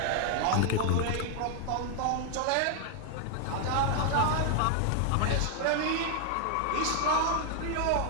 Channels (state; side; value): different; both; correlation 0.00